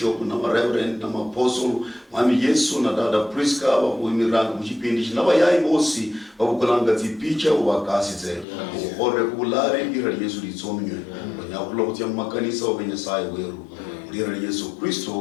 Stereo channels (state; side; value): drops out; right; at 8.5 s